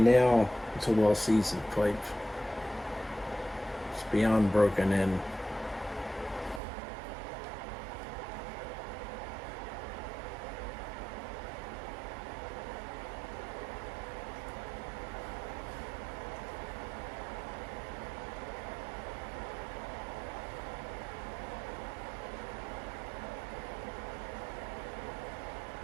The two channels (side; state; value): left; drops out; at 6.6 s